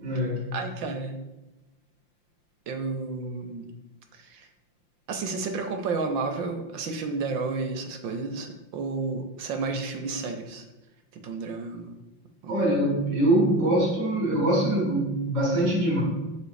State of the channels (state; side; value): late; left; 5.7 ms